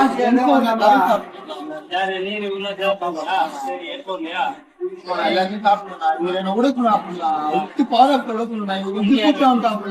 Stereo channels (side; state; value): both; identical; correlation 1.00